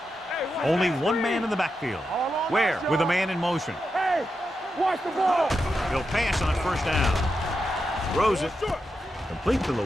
Hey, watch Only that one screen. man in the backfield. All on Where? us, With a y'all. man in motion. Hey, watch the ball. He'll pass on 1st down. Throws it. Complete to the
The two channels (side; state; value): both; normal; correlation 0.87